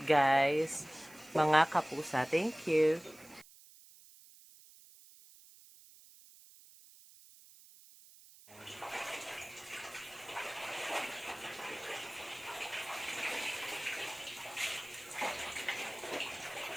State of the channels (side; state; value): right; noise; hiss, 22 dB below the sound